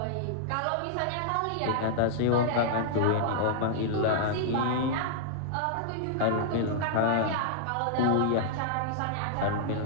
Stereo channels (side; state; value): both; different; correlation -0.01